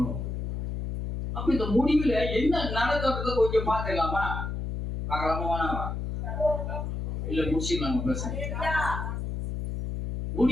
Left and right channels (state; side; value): noise; left; hum, 4 dB below the sound